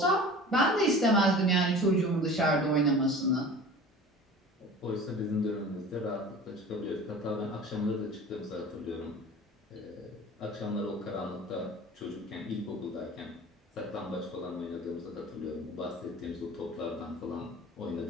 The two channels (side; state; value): both; normal; correlation 0.40